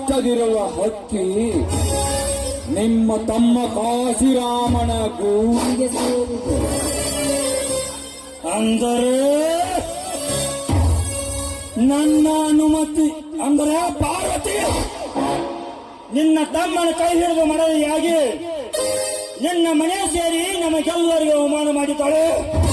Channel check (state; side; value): identical; both; correlation 1.00